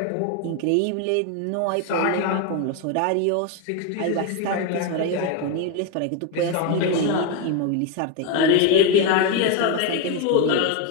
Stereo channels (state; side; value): different; both; correlation 0.02